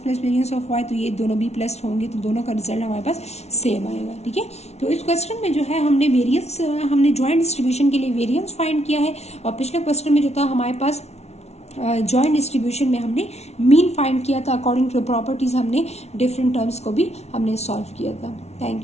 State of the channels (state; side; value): late; right; 0.31 ms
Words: variance of y, तो ये दोनों भी प्लस होंगे, तो दोनों का रिजल्ट हमारे पास सेम आएगा, ठीक है। तो इस क्वेश्चन में जो है हमने वेरियंस, हमने जॉइंट डिस्ट्रीब्यूशन के लिए वेरियंस फाइंड किया है, और पिछले क्वेश्चन में जो था हमारे पास जॉइंट डिस्ट्रीब्यूशन में हमने मीन फाइंड किया था, अकॉर्डिंग टू प्रॉपर्टीज हमने डिफरेंट टर्म्स को भी हमने सॉल्व किया था।